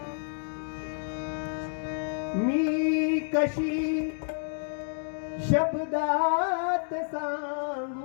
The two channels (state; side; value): silent; right; digital silence